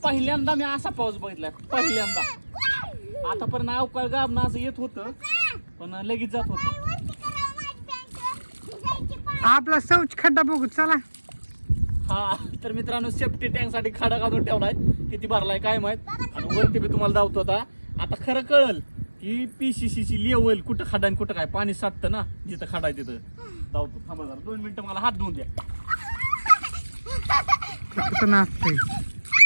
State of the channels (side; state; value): both; inverted; correlation -1.00